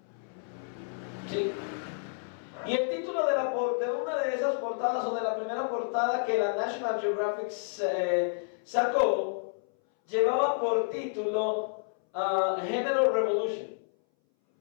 ¿Sí? Y el título de una de esas portadas, o de la primera portada que la National Geographic sacó, llevaba por título Género Revolution,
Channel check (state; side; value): silent; right; 58 dB below the other